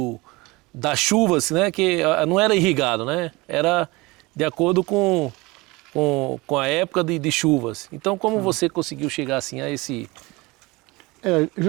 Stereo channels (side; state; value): left; quieter; 23.1 dB